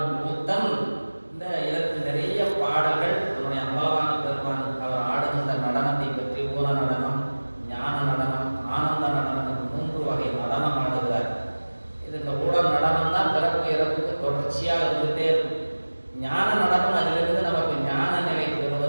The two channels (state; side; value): inverted; both; correlation -1.00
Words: கூத்தன். இந்த இதற்கு நிறைய பாடல்கள் நம்முடைய அம்பலவான பெருமான் அவர் ஆடுகின்ற நடனத்தை பற்றி, ஊர நடனம், ஞான நடனம், ஆனந்த நடனம், 3 வகை நடனம் ஆடுகிறார். இது இந்த ஊழல் நடனம் தான் பிறப்பு இறப்புக்கு தொடர்ச்சியாக இருந்துகிட்டே இருக்கும். ஞான நடனம் அதிலிருந்து நமக்கு ஞான நிலை